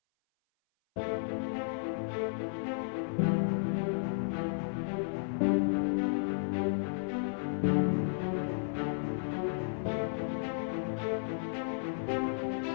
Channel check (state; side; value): silent; right; 55 dB below the other